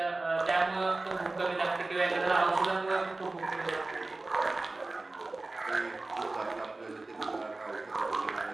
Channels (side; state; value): left; quieter; 3.1 dB